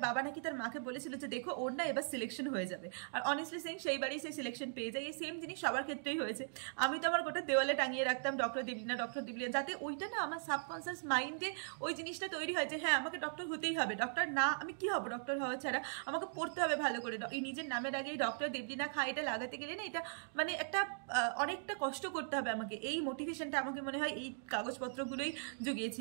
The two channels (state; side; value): silent; left; digital silence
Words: বাবা নাকি তার মাকে বলেছিল যে দেখো ওর না এবার সিলেকশন হয়ে যাবে। আর অনেস্টলি সেইং সেইবারই সেই সিলেকশন পেয়ে যায়। এই সেম জিনিস সবার ক্ষেত্রেই হয়েছে। আমি তো আমার গোটা দেওয়ালে টাঙিয়ে রাখতাম ডক্টর দেবলীনা, যাতে ওইটা না আমার সাবকনসিয়াস মাইন্ডে ওই জিনিসটা তৈরি হয় যে হ্যাঁ আমাকে ডক্টর হতেই হবে, ডক্টর না আমি কি হবো, ডক্টর হওয়া ছাড়া আমাকে পড়তে হবে ভালো করে। এই নিজের নামের আগে ডক্টর দেবলীনা খাঁ এটা লাগাতে গেলে না, এটা মানে একটা অনেকটা কষ্ট করতে হবে আমাকে। এই মোটিভেশনটা আমাকে মনে হয় এই কাগজপত্রগুলোই